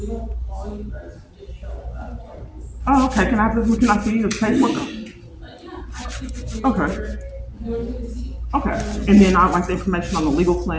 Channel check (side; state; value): both; identical; correlation 1.00